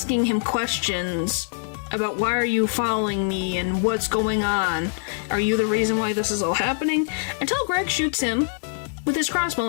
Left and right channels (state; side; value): silent; right; digital silence